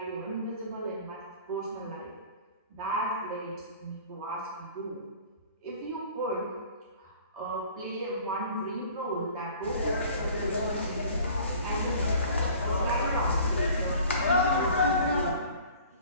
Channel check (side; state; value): both; inverted; correlation -0.48